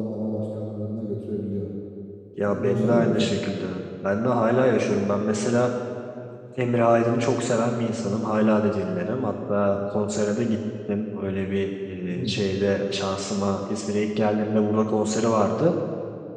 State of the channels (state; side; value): identical; both; correlation 1.00